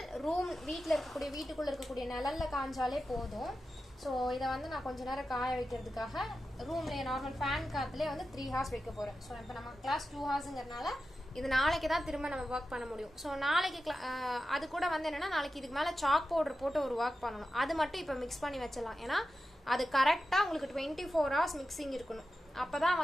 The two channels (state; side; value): normal; both; correlation 0.92